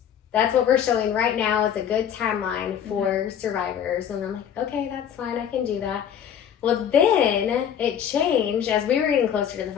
That's what we're showing right now as a good timeline for survivors. And I'm like, okay, that's fine, I can do that. Well, then it changed as we were getting closer to the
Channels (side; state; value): right; quieter; 9.0 dB